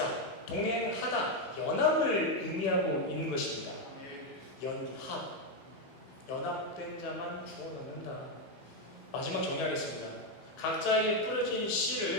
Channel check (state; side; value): late; right; 15 ms